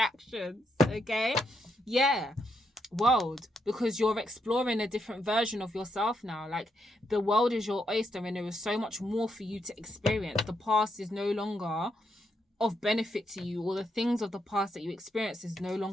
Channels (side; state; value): both; normal; correlation 0.79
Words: Okay? Yeah. World, because you're exploring a different version of yourself now. Like, the world is your oyster and there is so much more for you to experience. The past is no longer of benefit to you, or the things of the past that you experienced is no